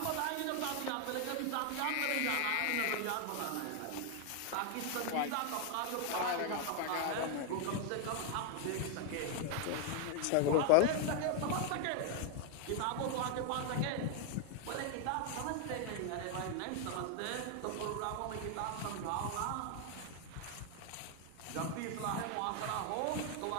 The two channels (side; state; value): both; different; correlation 0.00